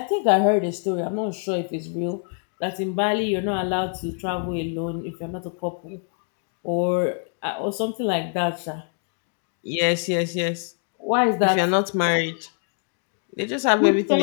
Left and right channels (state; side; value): silent; right; 58 dB below the other